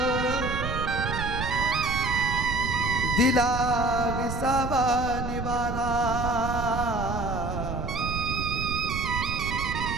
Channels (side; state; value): right; noise; rumble, 5 dB below the sound